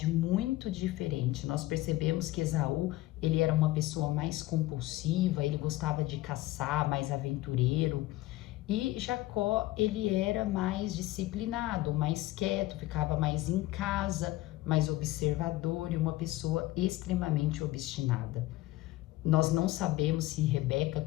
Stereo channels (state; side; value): quieter; right; 17.3 dB